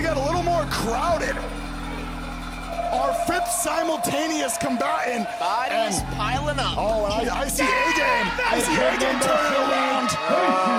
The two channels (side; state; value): both; identical; correlation 1.00